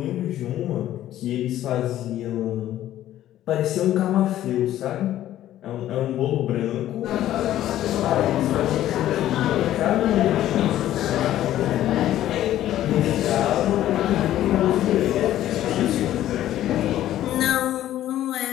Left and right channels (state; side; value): quieter; right; 13.0 dB